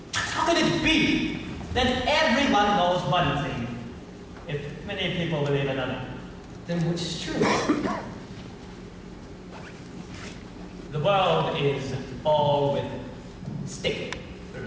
How can it be that everyone knows one thing, if many people believe another? Then which is true? The world is all with stick.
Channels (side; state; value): both; identical; correlation 1.00